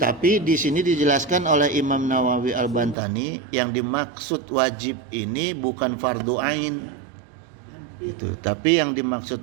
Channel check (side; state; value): left; drops out; at 3.0 s